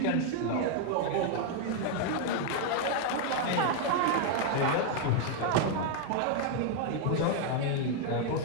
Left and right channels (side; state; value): both; different; correlation 0.00